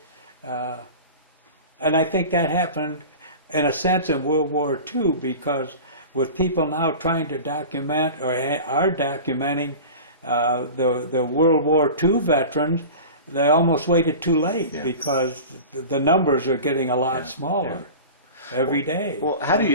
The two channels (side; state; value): both; inverted; correlation -0.35